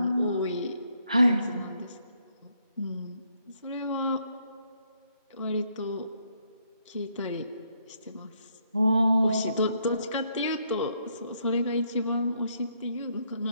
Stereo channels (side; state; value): both; inverted; correlation -0.73